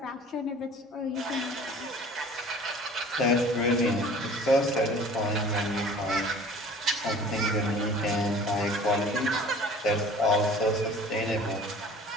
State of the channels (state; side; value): normal; both; correlation 0.46